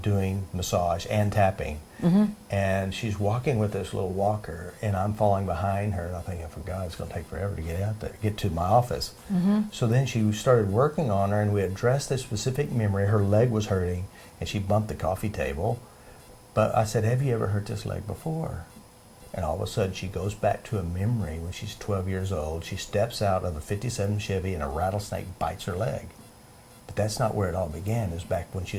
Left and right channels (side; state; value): both; identical; correlation 1.00